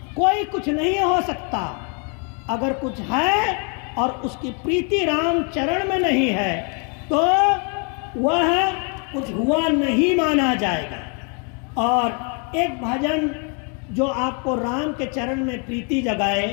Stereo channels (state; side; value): quieter; right; 37.6 dB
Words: कोई कुछ नहीं हो सकता। अगर कुछ है और उसकी प्रीति राम चरण में नहीं है तो वह कुछ हुआ नहीं माना जाएगा। और एक भजन जो आपको राम के चरण में प्रीति जगाए,